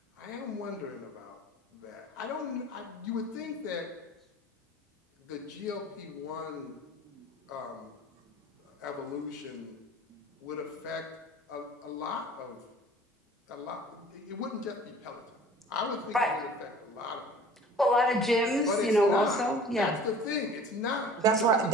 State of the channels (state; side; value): normal; both; correlation 0.46